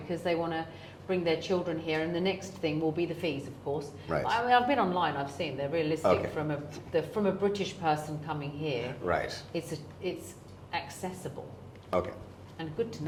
they want to bring their children here. And the next thing will be the fees, of course. Right. I mean, I've been online, I've seen they're realistic Okay. from a British person coming here. Right. It's accessible. Okay. And good to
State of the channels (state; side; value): identical; both; correlation 1.00